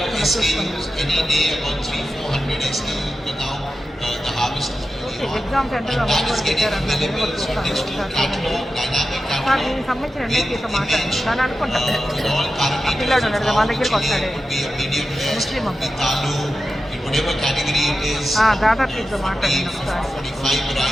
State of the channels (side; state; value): both; normal; correlation 0.92